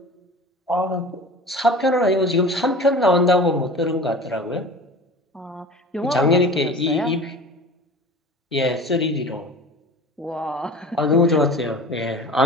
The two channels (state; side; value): normal; both; correlation 0.38